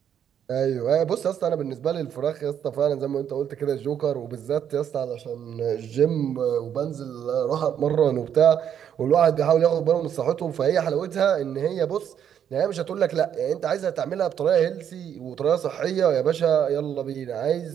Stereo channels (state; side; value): quieter; left; 9.1 dB